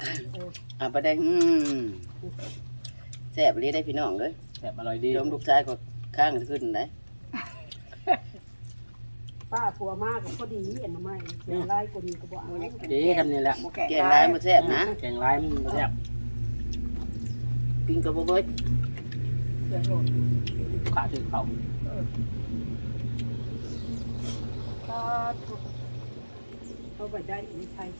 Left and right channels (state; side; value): inverted; both; correlation -1.00